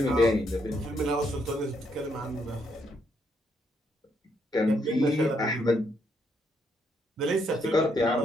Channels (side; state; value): both; normal; correlation 0.75